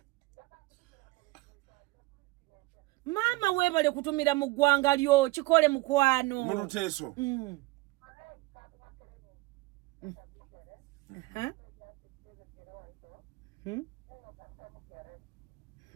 maama weebale kutumira mu ggwanga lyo kikole mukwano mu Luteeso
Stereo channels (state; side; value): quieter; left; 21.0 dB